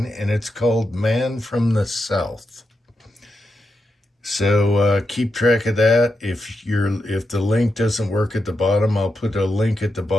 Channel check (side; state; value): both; normal; correlation 0.86